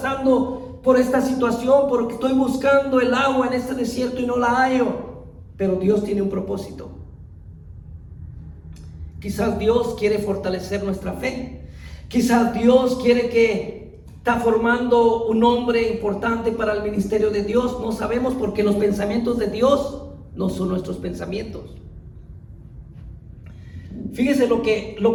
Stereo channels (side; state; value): both; identical; correlation 1.00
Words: por esta situación? Porque estoy buscando el agua en este desierto y no la hallo. Pero Dios tiene un propósito. Quizás Dios quiere fortalecer nuestra fe. Quizás Dios quiere está formando un hombre importante para el ministerio de Dios. No sabemos, porque los pensamientos de Dios no son nuestros pensamientos. Fíjese lo